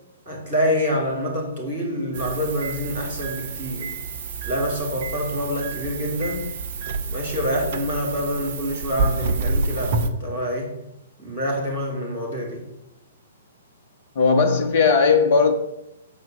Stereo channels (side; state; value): both; inverted; correlation -0.44